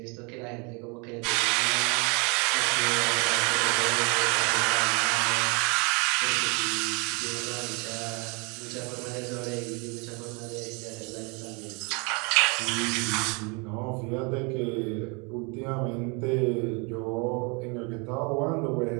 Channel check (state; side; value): quieter; left; 31.7 dB